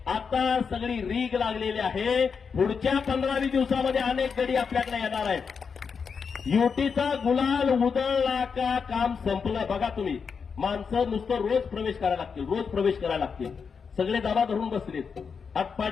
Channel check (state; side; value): quieter; right; 5.9 dB